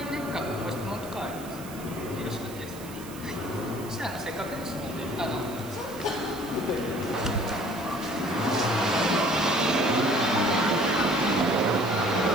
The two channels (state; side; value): noise; right; hiss, 17 dB below the sound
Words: 何かご質問とかありますか？よろしかったですかね。はい。そしたらせっかくですので、